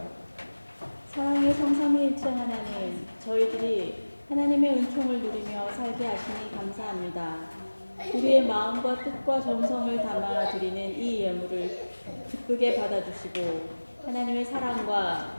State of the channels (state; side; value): inverted; both; correlation -1.00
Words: 사랑의 성삼위일체 하나님, 저희들이 하나님의 은총을 누리며 살게 하시니 감사합니다. 우리의 마음과 뜻과 정성을 담아 드리는 이 예물을 기쁘게 받아주시고 하나님의 사랑과